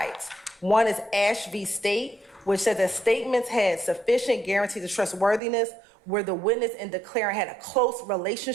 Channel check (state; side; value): drops out; left; at 5.4 s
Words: One is Ash v. State, which said that statements had sufficient guarantees of trustworthiness where the witness and declarant had a close